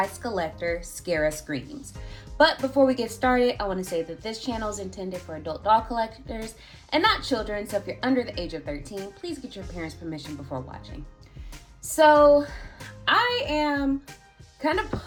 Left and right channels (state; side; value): identical; both; correlation 1.00